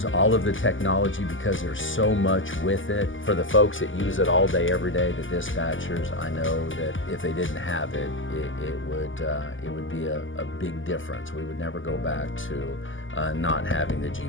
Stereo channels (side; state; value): right; late; 0.57 ms